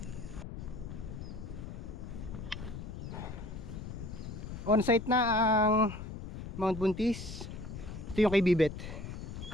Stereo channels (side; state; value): left; noise; rumble, 9 dB below the sound